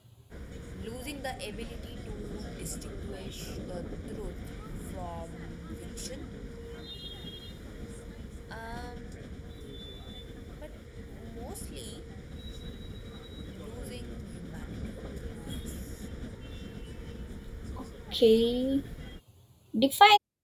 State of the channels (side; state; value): both; identical; correlation 1.00